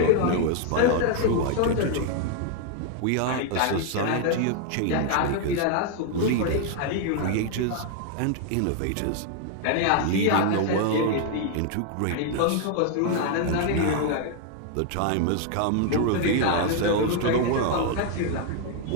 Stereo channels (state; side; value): different; both; correlation 0.00